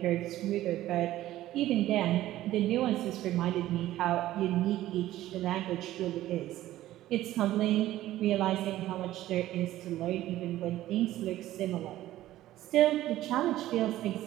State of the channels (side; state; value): left; quieter; 14.6 dB